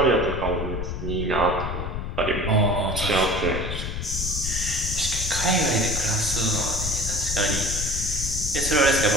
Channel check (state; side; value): noise; left; rumble, 4 dB below the sound